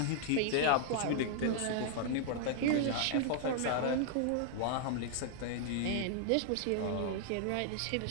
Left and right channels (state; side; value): different; both; correlation -0.01